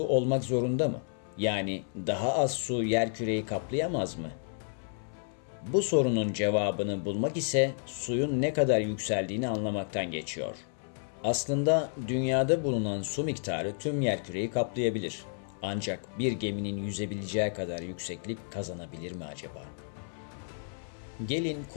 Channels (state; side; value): silent; right; 57 dB below the other